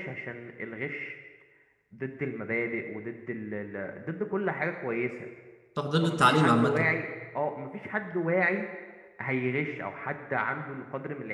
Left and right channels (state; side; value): identical; both; correlation 1.00